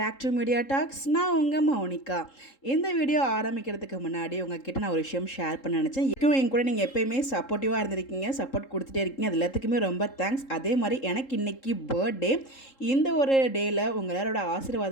to media talks. நான் உங்கள் மௌனிகா. இந்த வீடியோ ஆரம்பிக்கிறதுக்கு முன்னாடி உங்ககிட்ட நான் ஒரு விஷயம் ஷேர் பண்ண நினச்சேன். என் கூட நீங்கள் எப்போயுமே சப்போர்ட்டிவாக இருந்திருக்கீங்க, சப்போர்ட் கொடுத்துட்டே இருக்கீங்க. அது எல்லாத்துக்குமே ரொம்ப தேங்க்ஸ். அதே மாதிரி எனக்கு இன்றைக்கி பர்த்டே. இந்த ஒரு டேயில் உங்கள் எல்லாரோட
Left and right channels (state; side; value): late; right; 3.7 ms